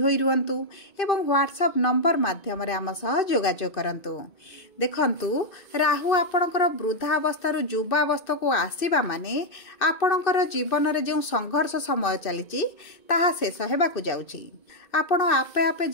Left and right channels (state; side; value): late; right; 2.6 ms